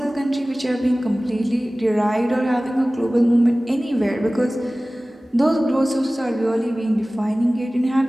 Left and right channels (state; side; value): normal; both; correlation 0.98